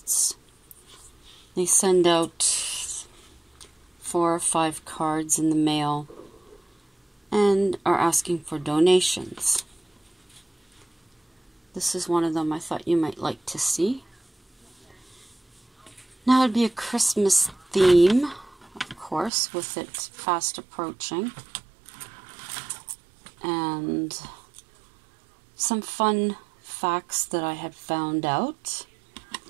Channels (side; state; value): left; drops out; at 19.3 s